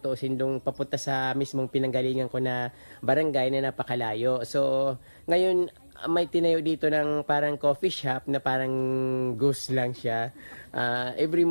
dong papunta sa mismong pinanggalingan ko na barangay na napakalayo. So ngayon may tinayo dito ng parang coffee shop na parang ghost lang siya. Every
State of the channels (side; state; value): both; inverted; correlation -1.00